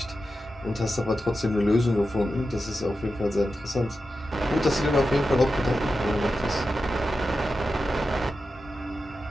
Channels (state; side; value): normal; both; correlation 0.91